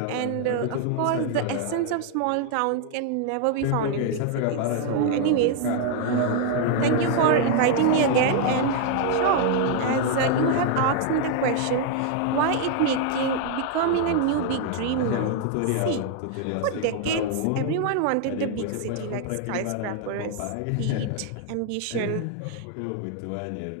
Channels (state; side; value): different; both; correlation 0.00